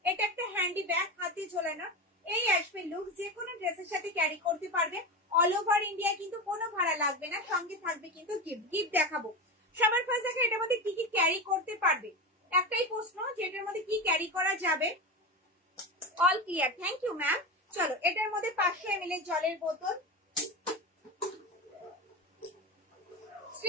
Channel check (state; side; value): normal; both; correlation 0.21